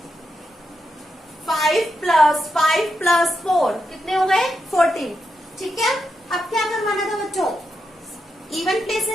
5 प्लस 5 प्लस 4 कितने हो गए 14। ठीक है, अब क्या करवाना था बच्चों, इवन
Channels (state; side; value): normal; both; correlation 0.85